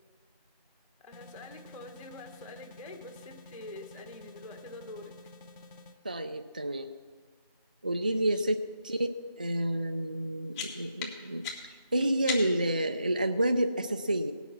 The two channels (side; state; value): both; inverted; correlation -0.82